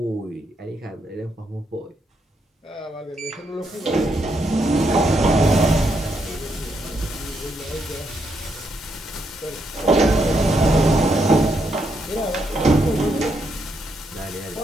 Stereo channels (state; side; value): normal; both; correlation 0.78